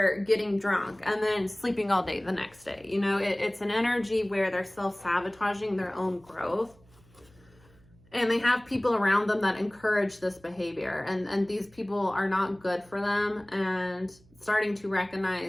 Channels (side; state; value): right; noise; hum, 28 dB below the sound